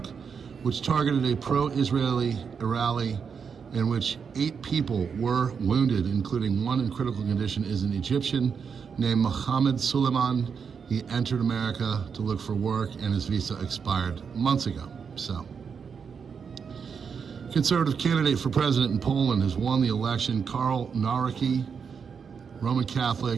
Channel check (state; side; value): quieter; left; 6.3 dB